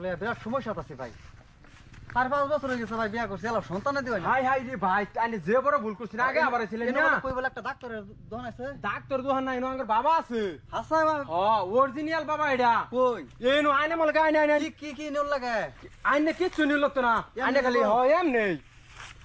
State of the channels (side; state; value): both; identical; correlation 1.00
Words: লইয়া বিরাট সমস্যা আছে ভাই 4-5 বছর হয়ে গেছে ভাই বিয়া করছি এলা সন্তান দিও না হাই হাই রে ভাই আনি যে বড় ভুল করছিস আগে আবার ছিলেন না কই বলে একটা ডাক্তারের দোকান আছে ডাক্তার দোহান নাই নো আঙ্গর বাবা আছে হাসাই ভাই ও অরিজিনাল বাবা এটা কই এনো আইনে মল গায় নাই নাই কি নিল লাগে আইনে কিচ্ছু নিল তো না আইনে খালি হ এম নেই